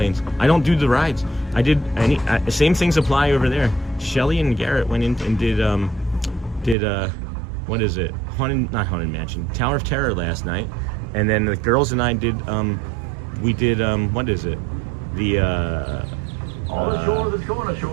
I don't do the rides. I did same things apply over there. Shelly and Garrett went in and did what is it? Not Haunted Mansion, Tower of Terror last night, and then the girls and I did we did what is it? The all ashore that's going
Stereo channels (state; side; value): drops out; left; at 6.8 s